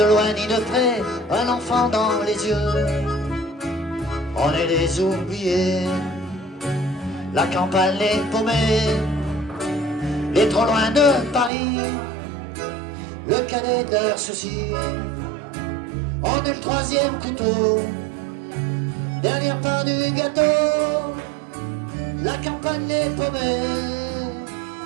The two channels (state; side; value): drops out; left; at 11.5 s